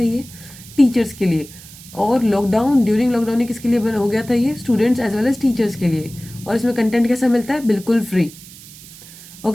ये टीचर्स के लिए। और ड्यूरिंग लॉकडाउन ये किसके लिए हो गया था, ये students as well as teachers के लिए। और इसमें कंटेंट कैसा मिलता है, बिल्कुल फ्री।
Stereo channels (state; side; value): noise; right; hiss, 18 dB below the sound